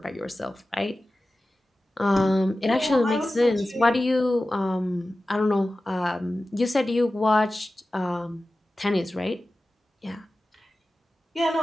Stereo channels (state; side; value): normal; both; correlation 0.95